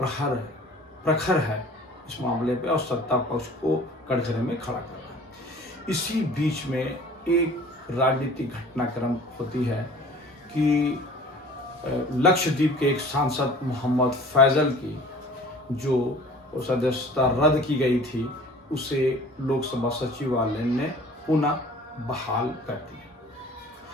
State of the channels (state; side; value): normal; both; correlation 0.47